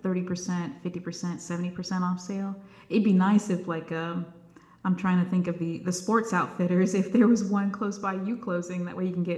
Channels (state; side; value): identical; both; correlation 1.00